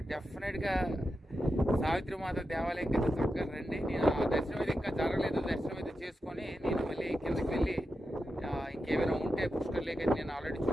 డెఫినెట్గా సావిత్రి మాత దేవాలయం కింద చక్కగా రండి. నేను ఆ దర్శనం అయితే ఇంకా జరగలేదు, దర్శనం అయితే చేసుకొని నేను మళ్ళీ కిందకి వెళ్ళి ఇంకేమైనా ఉంటే పుష్కర్ లేక్ అయితే నేను ఆల్రెడీ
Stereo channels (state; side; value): normal; both; correlation 0.89